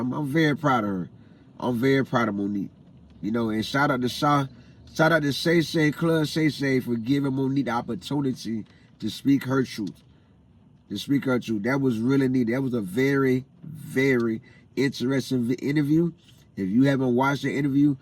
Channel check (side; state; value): both; identical; correlation 1.00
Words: very proud of her. I'm very proud of MoNique. You know, and shout out to Shay Shay, Club Shay Shay, for giving MoNique the opportunity to speak her truth. That was really neat. That was a very, very interesting interview. If you haven't watched the interview,